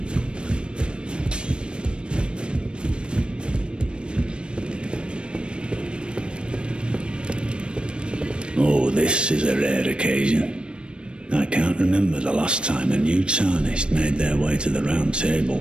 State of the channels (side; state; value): left; late; 0.056 ms